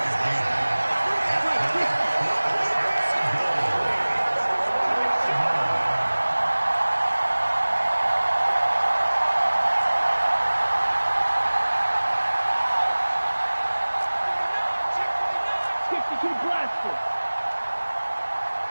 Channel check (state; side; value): inverted; both; correlation -1.00